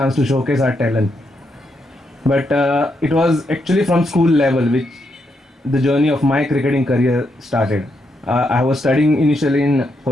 to showcase our talent. But it was actually from school level which the journey of my cricketing career started. I was studying initially in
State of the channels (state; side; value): normal; both; correlation 0.80